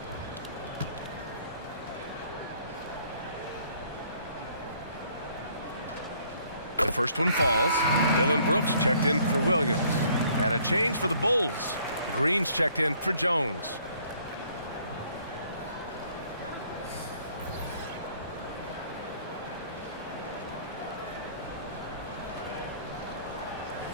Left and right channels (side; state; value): both; inverted; correlation -0.61